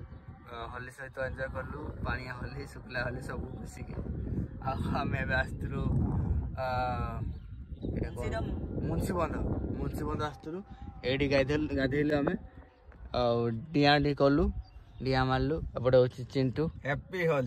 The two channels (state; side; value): identical; both; correlation 1.00